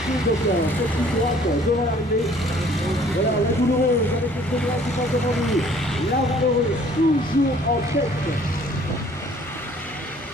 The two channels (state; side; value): normal; both; correlation 0.56